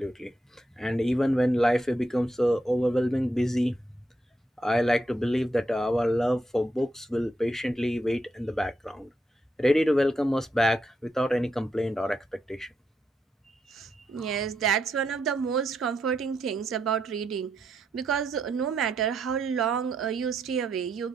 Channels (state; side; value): normal; both; correlation 0.80